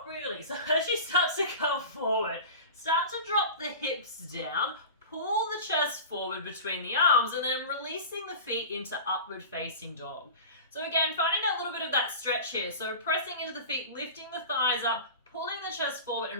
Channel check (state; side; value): inverted; both; correlation -0.33